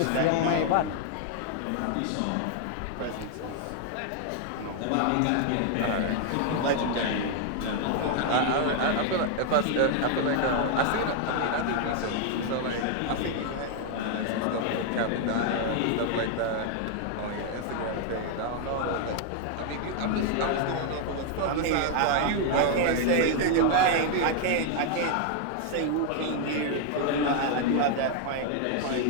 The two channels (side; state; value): both; different; correlation 0.00